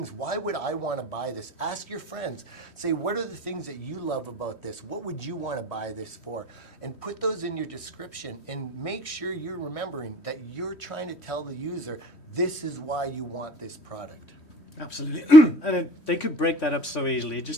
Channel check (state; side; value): late; right; 3.1 ms